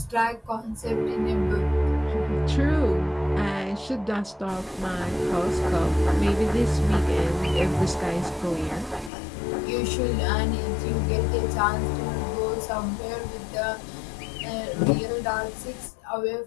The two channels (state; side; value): drops out; right; at 9.1 s